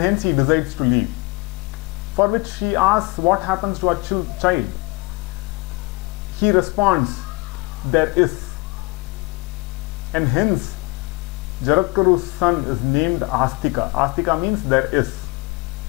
he decides to leave. For which she asks what happens to our child. He responds, there is. And hence Jaratkaru's son is named Astika. Astika means there is.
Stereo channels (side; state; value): right; quieter; 26.4 dB